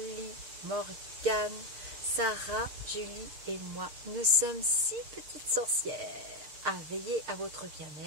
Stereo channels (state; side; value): late; left; 6.6 ms